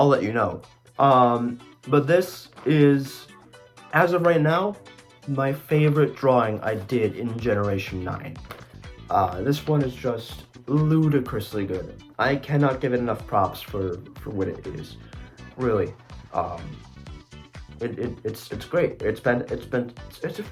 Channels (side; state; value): both; identical; correlation 1.00